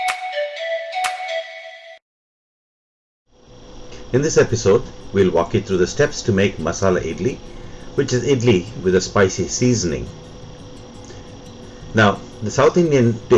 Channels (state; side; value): identical; both; correlation 1.00